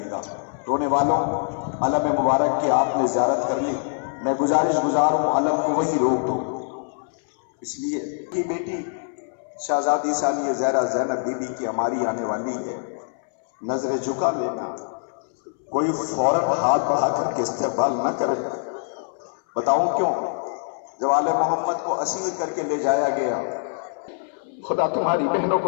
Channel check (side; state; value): right; silent; 63 dB below the other